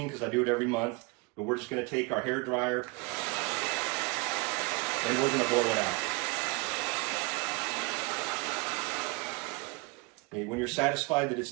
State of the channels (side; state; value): left; quieter; 27.3 dB